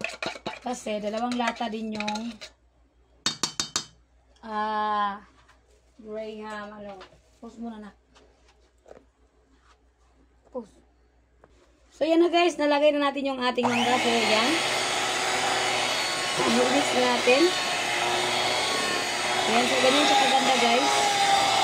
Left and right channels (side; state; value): both; identical; correlation 1.00